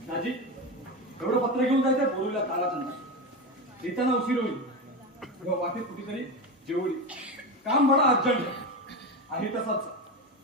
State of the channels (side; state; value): both; normal; correlation 0.19